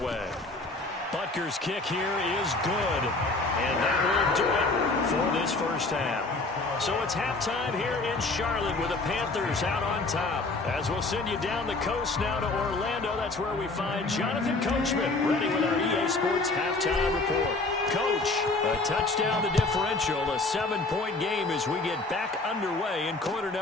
Butker's kick here is good. And that will do it for this first half. So it's halftime here in Charlotte with the Panthers out on top. As we'll send you down the coast now to Orlando, that's where we find Jonathan Coachman ready with our EA Sports halftime report. Coach, a touchdown to differential, a 7-point game as we get back underway in quarter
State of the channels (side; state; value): right; quieter; 3.3 dB